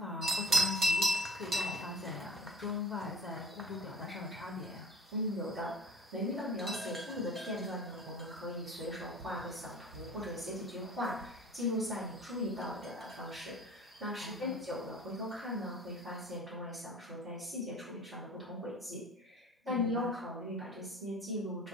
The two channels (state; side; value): normal; both; correlation 0.45